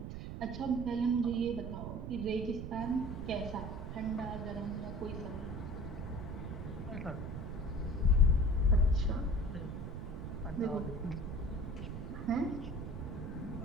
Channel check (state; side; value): noise; right; rumble, 6 dB below the sound